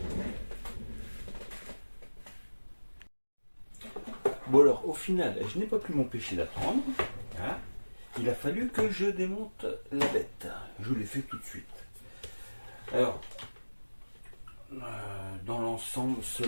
Bon alors au final je n'ai pas pu m'empêcher d'attendre. Hein. Il a fallu que je démonte la bête. Je l'ai fait tout de suite. Alors dans l'ensemble,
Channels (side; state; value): both; inverted; correlation -1.00